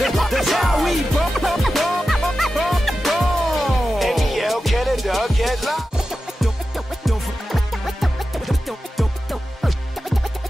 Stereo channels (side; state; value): both; normal; correlation 0.92